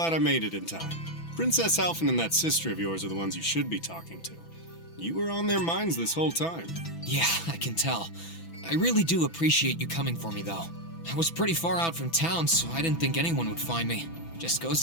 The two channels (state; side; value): late; right; 6.0 ms